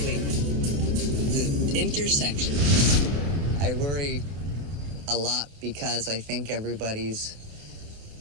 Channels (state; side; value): late; left; 28 ms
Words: the intersection. I worry a lot because I think everybody's